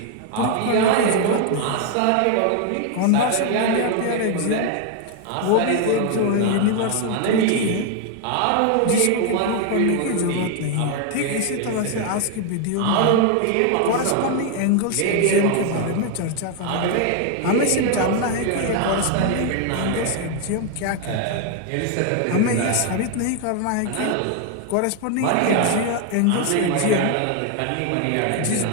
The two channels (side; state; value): both; different; correlation 0.00